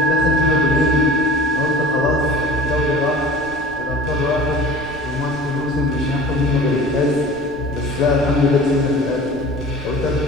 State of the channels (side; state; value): left; noise; rumble, 20 dB below the sound